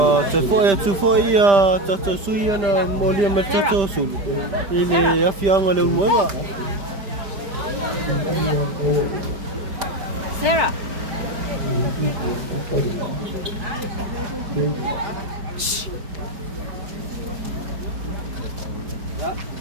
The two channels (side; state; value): left; late; 4.7 ms